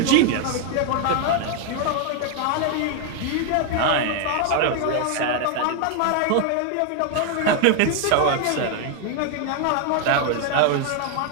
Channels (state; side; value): different; both; correlation 0.01